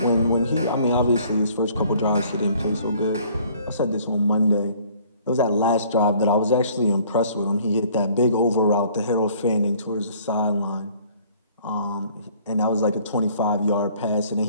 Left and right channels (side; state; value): both; inverted; correlation -0.57